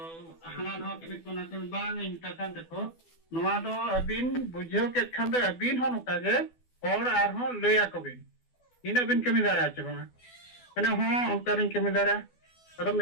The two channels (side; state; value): right; late; 12 ms